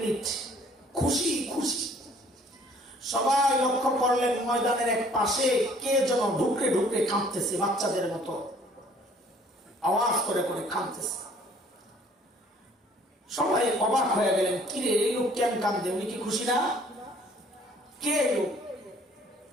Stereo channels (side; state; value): both; normal; correlation 0.57